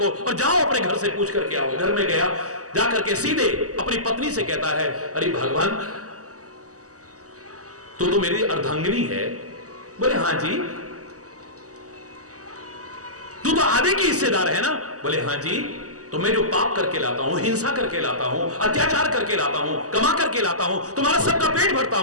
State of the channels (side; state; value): left; late; 0.66 ms